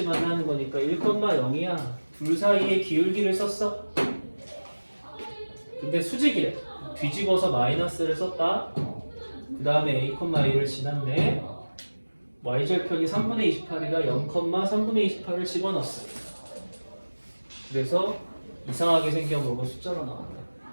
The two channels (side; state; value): both; inverted; correlation -1.00